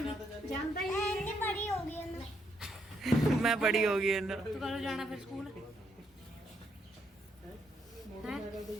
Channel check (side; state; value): both; normal; correlation 0.75